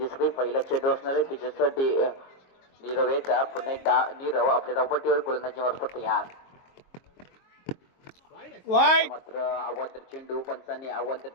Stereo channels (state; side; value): late; right; 22 ms